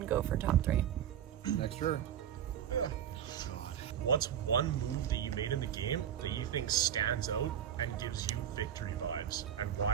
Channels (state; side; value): quieter; left; 9.8 dB